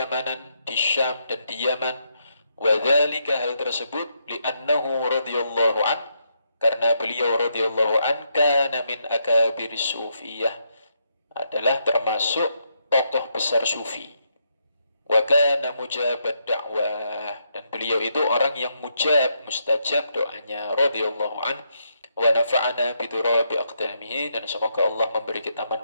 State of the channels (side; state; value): both; inverted; correlation -0.78